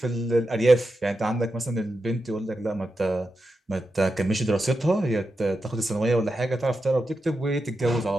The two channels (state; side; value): normal; both; correlation 0.89